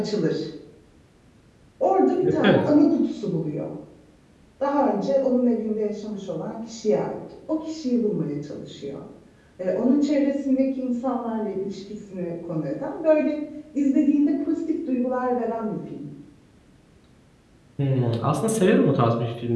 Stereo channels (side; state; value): both; identical; correlation 1.00